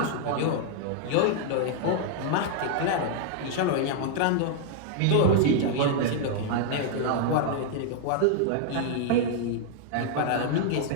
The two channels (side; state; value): both; different; correlation 0.00